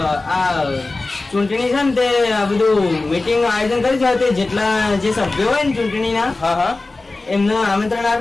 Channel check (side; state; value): right; quieter; 3.3 dB